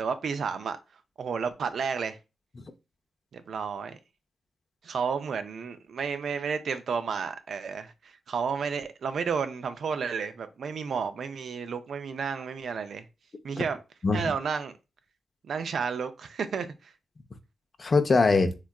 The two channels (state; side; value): normal; both; correlation 0.82